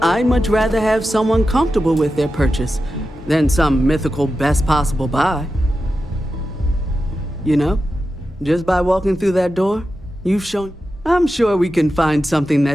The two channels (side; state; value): both; normal; correlation 0.91